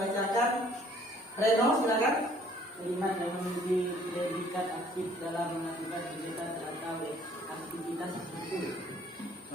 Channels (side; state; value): both; normal; correlation 0.59